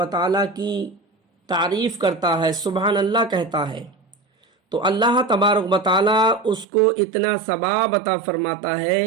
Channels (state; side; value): drops out; left; at 6.7 s